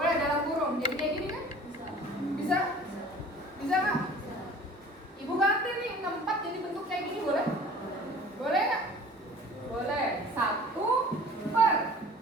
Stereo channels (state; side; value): normal; both; correlation 0.45